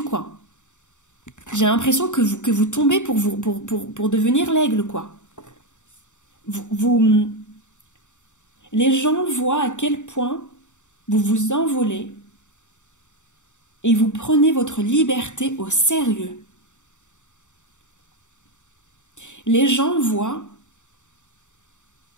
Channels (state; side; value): late; right; 0.85 ms